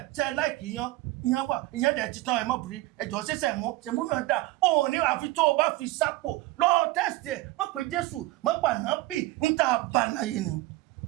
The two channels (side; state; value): left; quieter; 18.5 dB